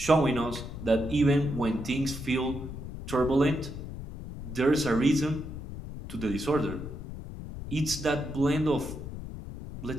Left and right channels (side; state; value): left; noise; rumble, 9 dB below the sound